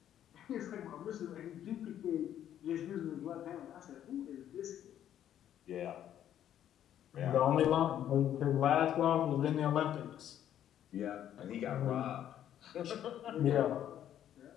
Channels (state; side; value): quieter; right; 10.8 dB